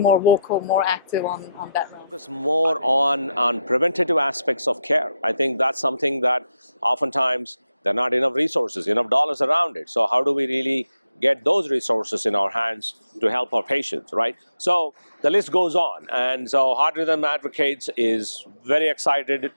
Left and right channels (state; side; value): inverted; both; correlation -0.85